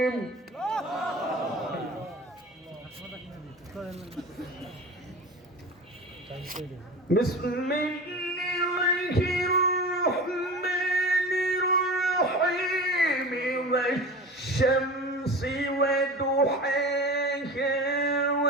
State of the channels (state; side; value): normal; both; correlation 0.33